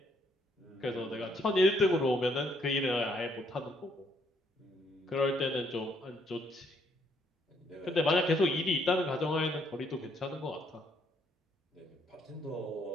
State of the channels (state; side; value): normal; both; correlation 0.70